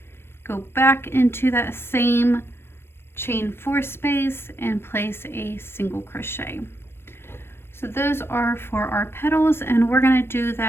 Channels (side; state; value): right; late; 0.11 ms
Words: Go back into that same chain 4 space and place a single crochet. So those are for our petals, and we're going to do